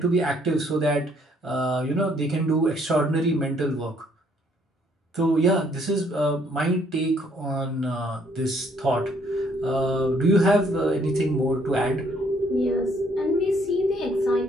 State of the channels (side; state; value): both; normal; correlation 0.66